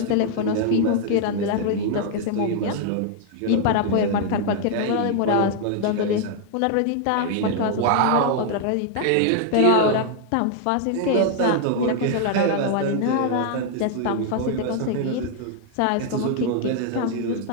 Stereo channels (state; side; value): different; both; correlation 0.00